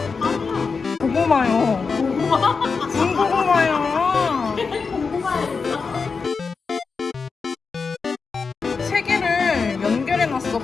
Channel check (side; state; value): right; quieter; 4.9 dB